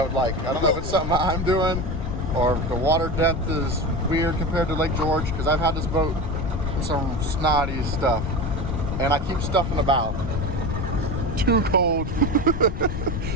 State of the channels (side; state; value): left; noise; rumble, 4 dB below the sound